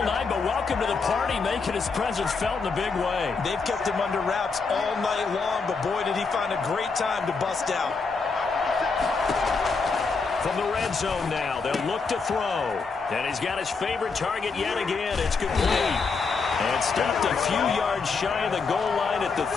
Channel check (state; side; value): quieter; right; 4.7 dB